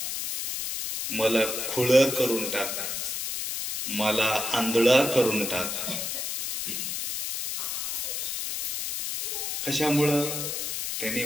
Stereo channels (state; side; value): noise; left; hiss, 2 dB below the sound